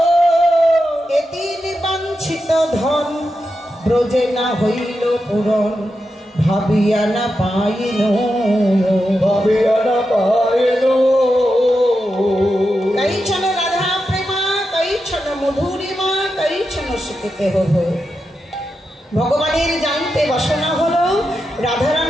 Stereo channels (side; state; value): both; normal; correlation 0.88